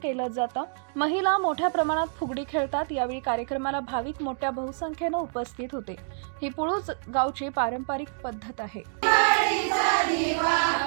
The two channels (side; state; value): left; silent; digital silence